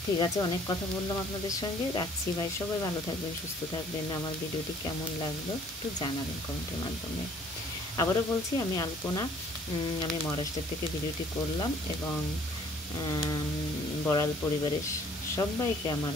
ঠিক আছে, অনেক কথা বললাম আপনাদের সঙ্গে, রাখছি ভাই। সবাই ভালো থাকবেন, সুস্থ থাকবেন। আমার ভিডিওটি কেমন লাগলো একটু জানাবেন কমেন্টের মাধ্যমে। আবারও বলছি, আমি আলপনা, আমি মহারাষ্ট্র থেকে ভিডিওটি করলাম, এবং বড়াল পরিবারের সবাইকে আমার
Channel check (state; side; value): normal; both; correlation 0.57